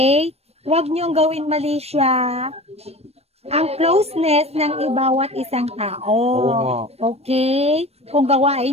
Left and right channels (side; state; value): left; late; 0.30 ms